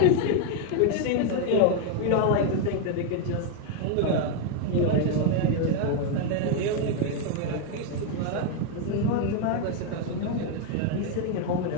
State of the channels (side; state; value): both; different; correlation 0.00